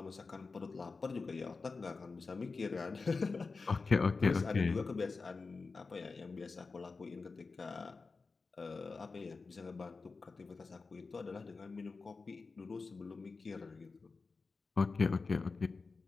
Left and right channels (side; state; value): right; quieter; 4.2 dB